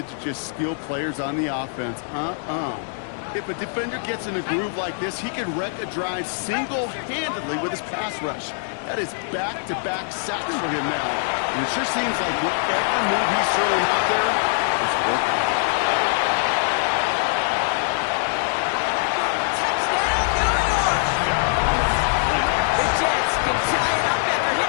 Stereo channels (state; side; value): silent; right; digital silence